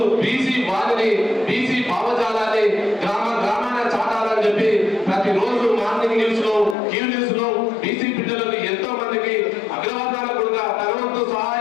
బీసీ వారిని బీసీ భావజాలాన్ని గ్రామాన చాటాలని చెప్పి ప్రతిరోజు మార్నింగ్ న్యూస్ లో క్యూ న్యూస్ లో బీసీ బిడ్డలకు ఎంతో మందికి అగ్రవర్ణాల కూడా తనవంతు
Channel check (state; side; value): drops out; right; at 6.8 s